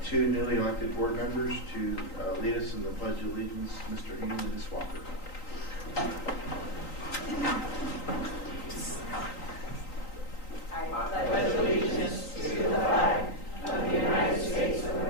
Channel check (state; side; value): late; right; 3.9 ms